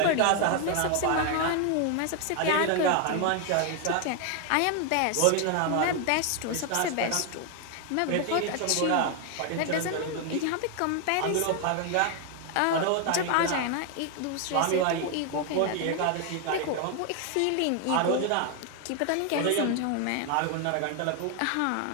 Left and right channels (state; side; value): different; both; correlation 0.01